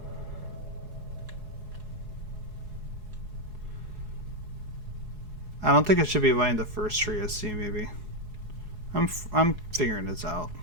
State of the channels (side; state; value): left; late; 4.7 ms